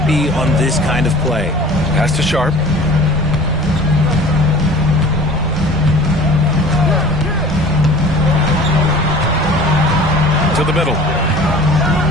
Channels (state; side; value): normal; both; correlation 0.44